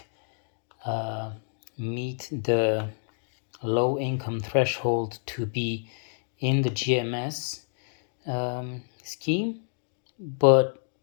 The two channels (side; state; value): right; silent; digital silence